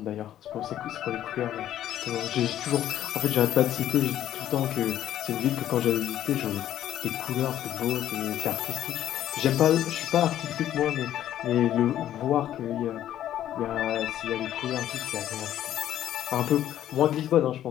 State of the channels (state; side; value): quieter; right; 11.8 dB